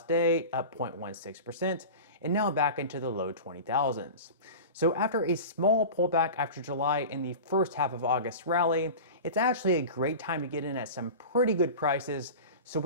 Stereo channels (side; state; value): both; inverted; correlation -0.32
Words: day, up 0.16%, and now back into the low 20,000s. So after a small pullback after July and the first half of August rally, it's actually a great time to get in at some pretty good prices. So